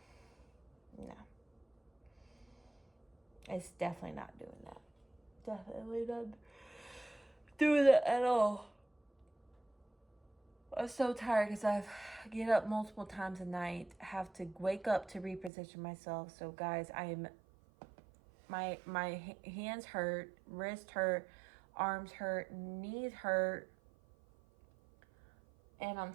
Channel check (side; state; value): left; drops out; at 15.5 s